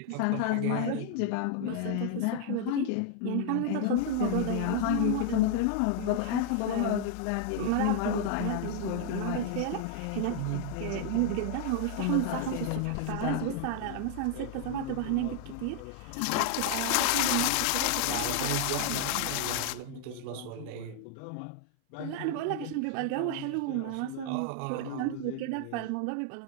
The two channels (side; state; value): both; different; correlation 0.00